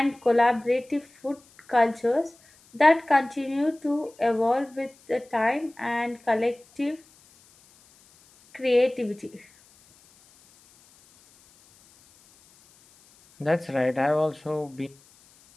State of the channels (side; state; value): left; noise; hiss, 29 dB below the sound